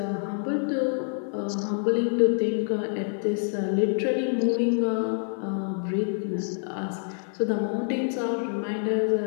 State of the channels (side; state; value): right; silent; digital silence